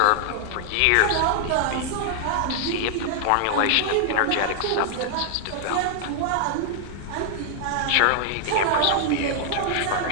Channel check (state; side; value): different; both; correlation 0.00